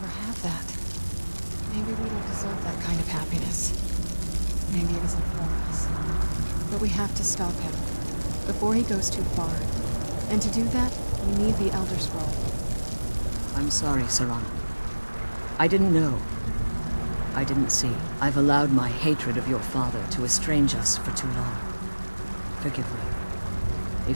have that. Maybe we don't deserve that kind of happiness. Maybe it isn't for us. But we have to stop him, before he goes too far. And to do that, we need the Elder Scroll. I'm sorry, Serana. I didn't know. I didn't see. I've allowed my hatred of your father to estrange us for too long. Forgive me.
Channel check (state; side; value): inverted; both; correlation -1.00